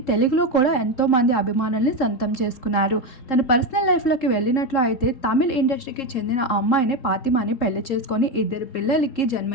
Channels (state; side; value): late; right; 3.7 ms